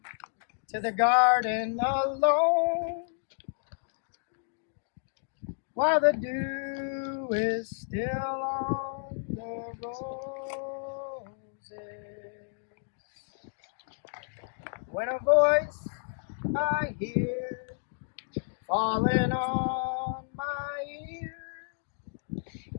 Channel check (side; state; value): right; silent; digital silence